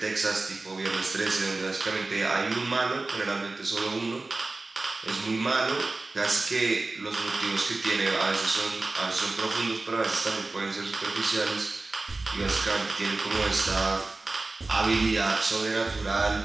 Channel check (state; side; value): quieter; left; 3.3 dB